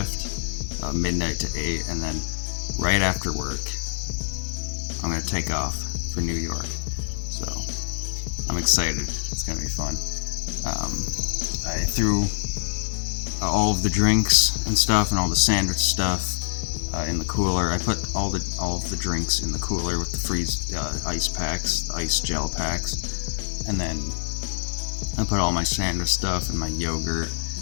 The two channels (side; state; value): right; silent; digital silence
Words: midnight to 8, and then right after work I'm gonna take off for New York. So I'm excited. It's gonna be fun. I threw all of the drinks and stuff and all the sandwich stuff in the cooler. I put all of the drinks in the cooler with the freeze ice packs, the ice gel packs, and then I put all my sandwich stuff and my yogurt